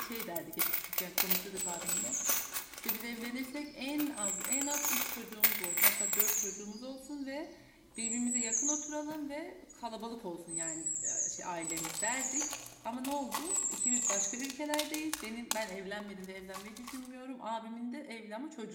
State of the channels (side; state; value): both; identical; correlation 1.00